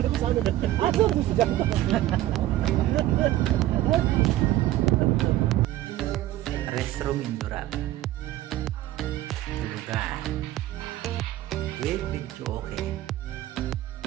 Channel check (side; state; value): left; quieter; 14.8 dB